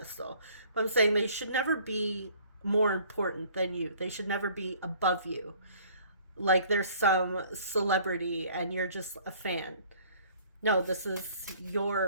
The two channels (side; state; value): both; inverted; correlation -0.55